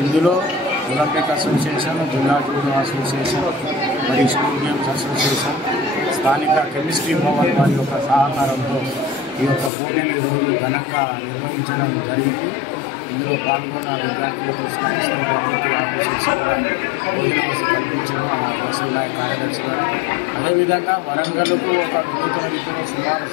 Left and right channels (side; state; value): right; drops out; at 9.7 s